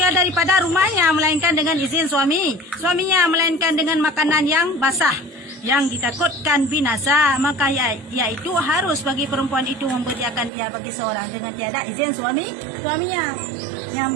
daripada rumahnya melainkan dengan izin suaminya melainkan dengan makanan yang basah yang ditakutkan binasa, maka yaitu harus bagi perempuan itu memberikan ia bagi seorang dengan tiada izin suaminya.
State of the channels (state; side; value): drops out; left; at 10.5 s